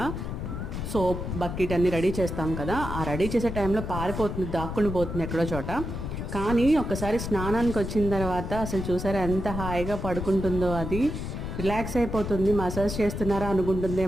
సోప్ బకెట్ అన్నీ రెడీ చేస్తాం కదా, ఆ రెడీ చేసే టైంలో పారిపోతుంది, దాక్కుని పోతుంది ఎక్కడో చోట. కానీ ఒకసారి స్నానానికి వచ్చిన తర్వాత అసలు చూసారా ఎంత హాయిగా పడుకుంటుందో, అది రిలాక్స్ అయిపోతుంది. మసాజ్ చేస్తున్నారా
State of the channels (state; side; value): noise; left; rumble, 5 dB below the sound